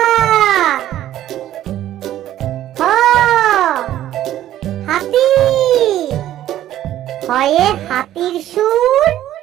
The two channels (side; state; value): left; quieter; 12.7 dB